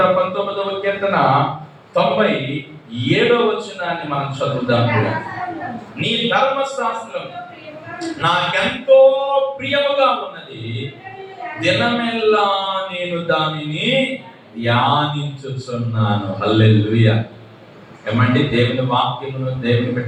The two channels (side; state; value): both; identical; correlation 1.00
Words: వచనాన్ని మనం చదువుదాం. నీ ధర్మశాస్త్రం నాకెంతో ప్రియముగా ఉన్నది, దినమెల్లా నేను దానిని ధ్యానించుచున్నాను. హల్లెలూయా. ఏమండి, దేవుని వాక్యమును దేవుని